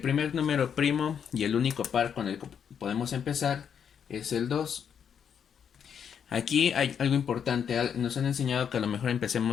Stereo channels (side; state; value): right; quieter; 7.8 dB